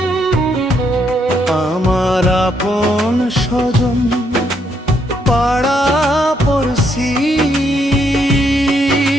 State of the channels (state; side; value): normal; both; correlation 0.74